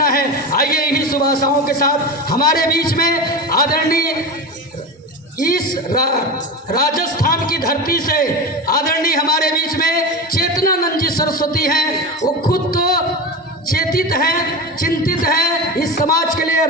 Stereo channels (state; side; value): normal; both; correlation 0.24